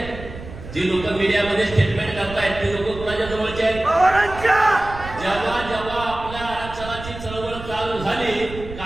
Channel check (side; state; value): right; noise; rumble, 12 dB below the sound